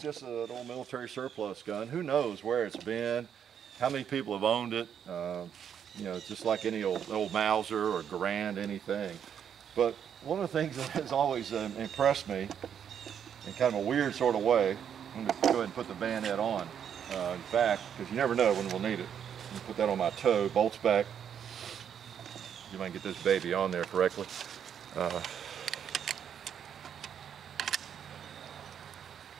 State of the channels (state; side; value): quieter; left; 8.5 dB